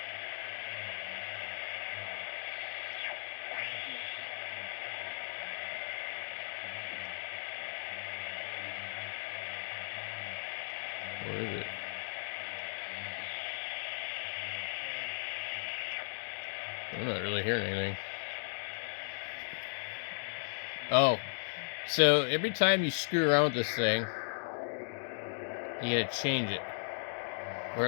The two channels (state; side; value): silent; right; digital silence